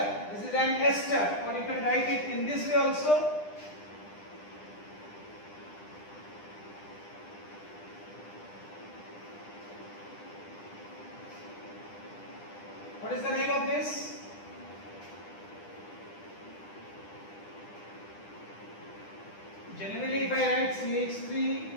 This is an ester, or you can write it in this way also. What is the name of this? Generally, if I write CH3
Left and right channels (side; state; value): right; late; 10 ms